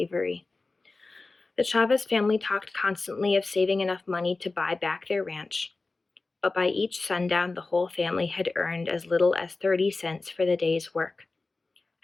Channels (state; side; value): quieter; right; 3.6 dB